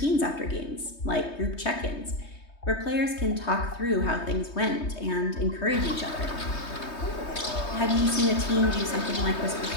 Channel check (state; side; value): late; right; 3.2 ms